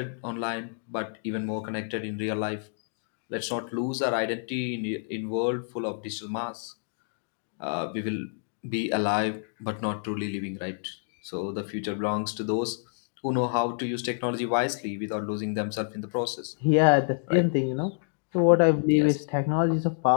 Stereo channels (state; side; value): silent; right; digital silence